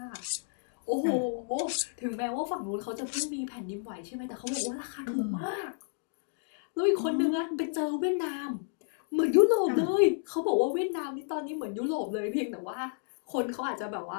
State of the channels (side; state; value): right; silent; digital silence